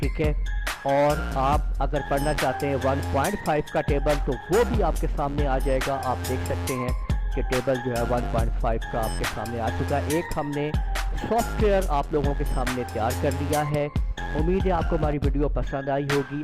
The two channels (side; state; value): both; identical; correlation 1.00